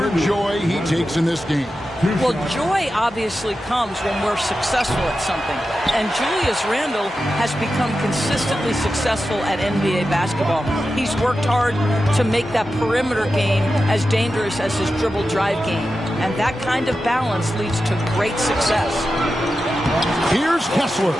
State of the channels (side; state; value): both; normal; correlation 0.91